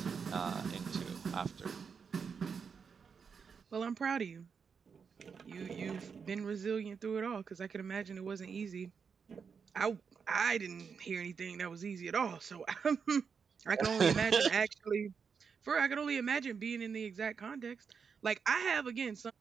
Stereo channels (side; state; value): left; quieter; 6.1 dB